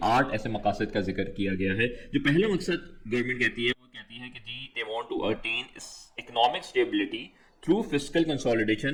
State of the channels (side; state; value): both; identical; correlation 1.00